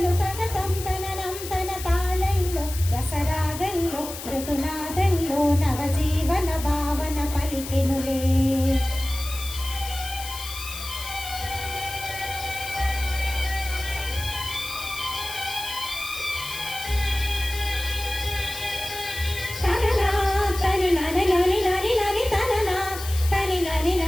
కగతం తననం తన తాళల్లో రసరాగల్లో మృదునాదల్లో నవజీవన భావన పలికెనులే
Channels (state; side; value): noise; left; hiss, 10 dB below the sound